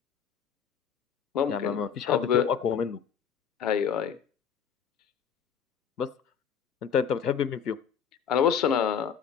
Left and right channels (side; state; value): right; quieter; 7.6 dB